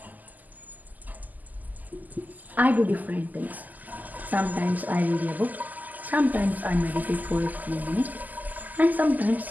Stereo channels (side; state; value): left; late; 0.082 ms